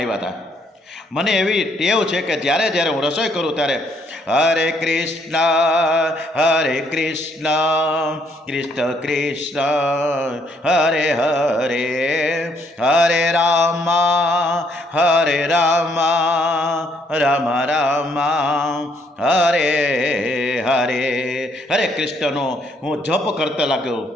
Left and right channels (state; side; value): normal; both; correlation 0.69